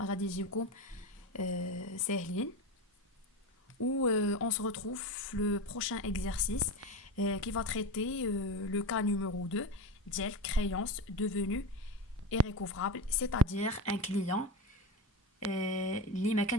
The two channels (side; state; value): both; normal; correlation 0.22